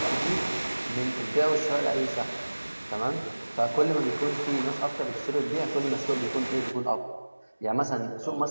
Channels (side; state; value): both; inverted; correlation -1.00